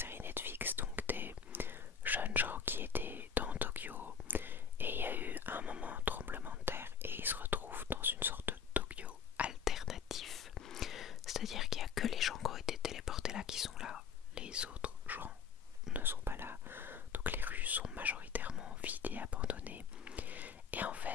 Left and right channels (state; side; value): quieter; right; 6.7 dB